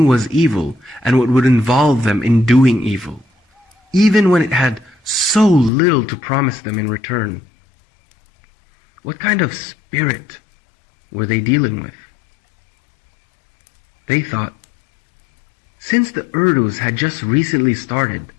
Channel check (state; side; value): drops out; right; at 5.7 s